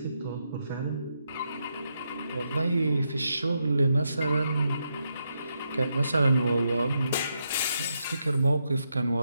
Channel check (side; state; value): both; inverted; correlation -0.82